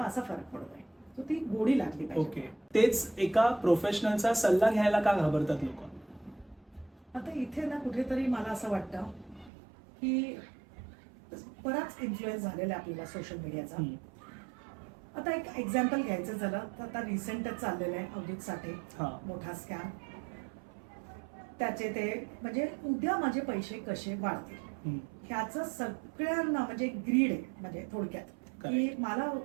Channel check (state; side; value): drops out; left; at 9.5 s